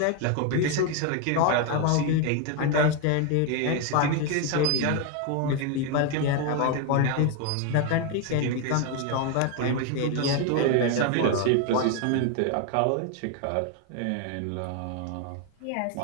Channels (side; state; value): both; different; correlation 0.01